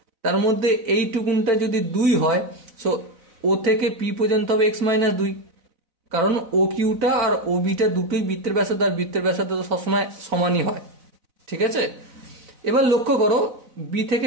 তার মধ্যে এইটুকুনটা যদি 2 হয়, সো ও থেকে পি পর্যন্ত হবে এক্স মাইনাস 2, কারণ ও কিউটা আর ও বিটা দুটোই বৃত্তের ব্যাসার্ধ, আর বৃত্তের ব্যাসার্ধ তো সবসময় সমানই হয়, ঠিক আছে। এবার লক্ষ্য করো বি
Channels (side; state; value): left; late; 4.0 ms